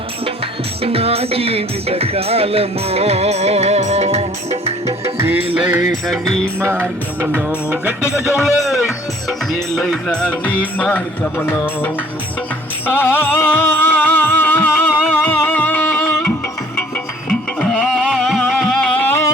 నా జీవిత కాలము నీలైన నీ మార్గములో. గట్టిగా చూడలే, నీలైన నీ మార్గములో.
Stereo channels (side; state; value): both; normal; correlation 0.56